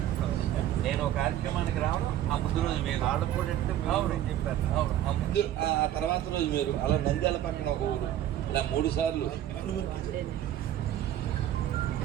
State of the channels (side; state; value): left; quieter; 11.9 dB